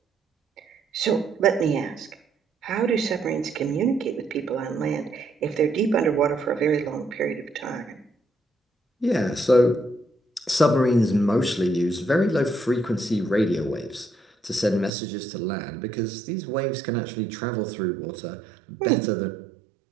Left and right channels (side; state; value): left; drops out; at 14.9 s